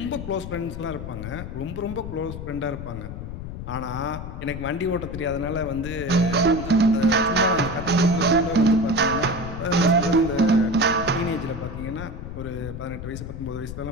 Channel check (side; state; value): left; noise; rumble, 8 dB below the sound